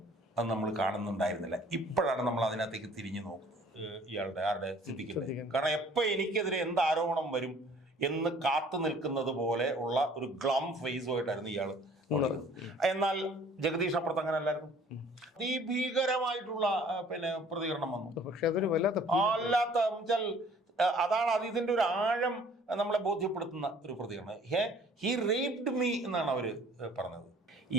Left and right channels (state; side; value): normal; both; correlation 0.54